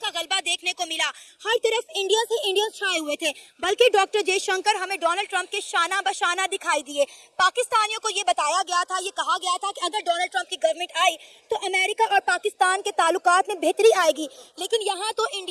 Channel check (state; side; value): identical; both; correlation 1.00